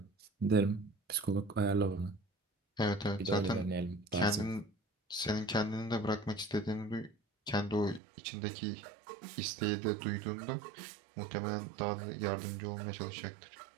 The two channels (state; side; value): drops out; left; at 8.0 s